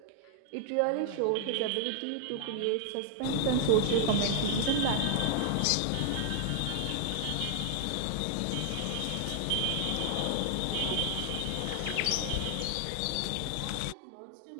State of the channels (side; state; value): both; different; correlation 0.00